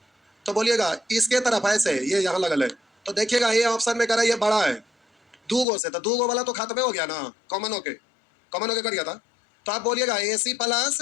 तो बोलिएगा इसके तरफ ऐसे ये यहाँ लगल है, तो देखिएगा ये ऑप्शन में करा ये बड़ा है दो गो से, तो दो गो वाला तो खत्म हो गया ना, कॉमन होके कर गया था। तो आप बोलिएगा A C plus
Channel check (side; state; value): right; drops out; at 5.7 s